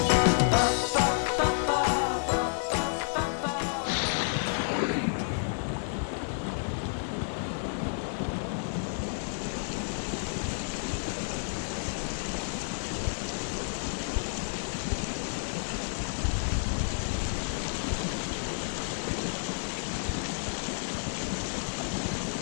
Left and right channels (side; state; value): right; silent; digital silence